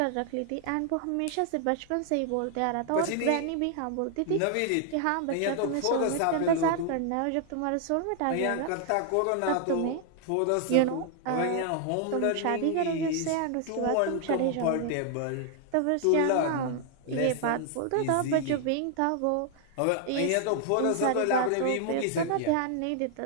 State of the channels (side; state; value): both; different; correlation 0.00